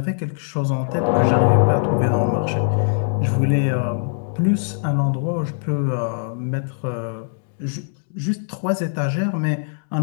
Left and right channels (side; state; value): right; silent; digital silence